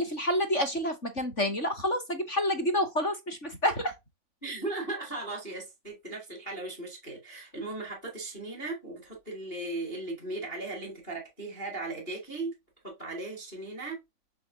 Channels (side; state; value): right; late; 3.5 ms